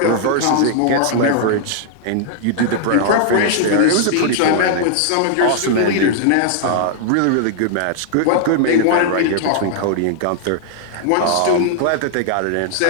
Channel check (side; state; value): both; different; correlation -0.01